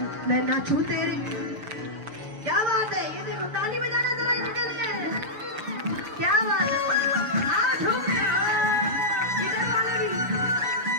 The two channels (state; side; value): late; left; 6.9 ms